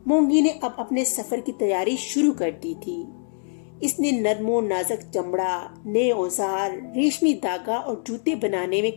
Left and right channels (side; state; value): right; silent; digital silence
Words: मोंगी ने अब अपने सफर की तैयारी शुरू कर दी थी। इसने नरमो नाजुक चमड़ा, नए औजार, रेशमी धागा और जूते बनाने